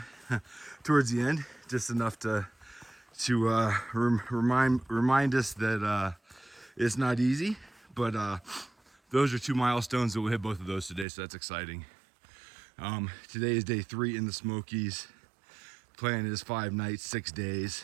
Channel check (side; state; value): left; drops out; at 11.1 s